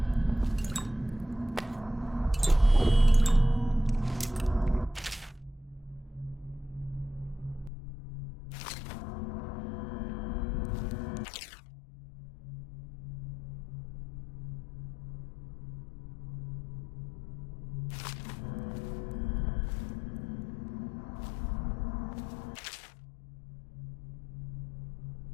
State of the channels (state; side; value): drops out; right; at 7.7 s